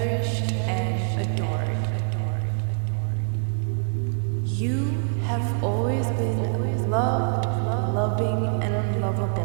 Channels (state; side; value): silent; left; 62 dB below the other